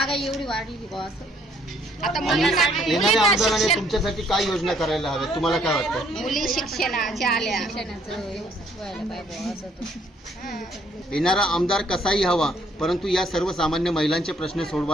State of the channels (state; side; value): normal; both; correlation 0.65